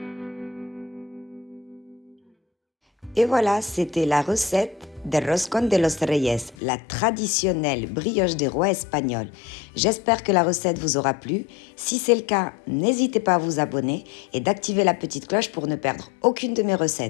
Et voilà, c'était la recette de Roscón de los Reyes, la traditionnelle brioche des rois espagnols. J'espère que la recette vous aura plu. Si c'est le cas, n'hésitez pas à vous abonner et d'activer la petite cloche pour ne perdre aucune de mes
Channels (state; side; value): drops out; right; at 6.6 s